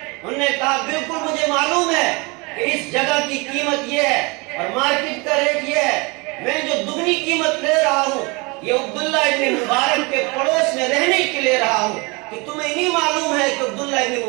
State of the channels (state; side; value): quieter; left; 27.5 dB